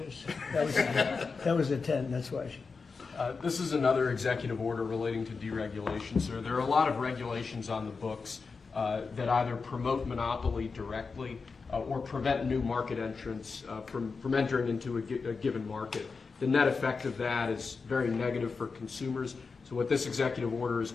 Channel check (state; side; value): quieter; right; 4.7 dB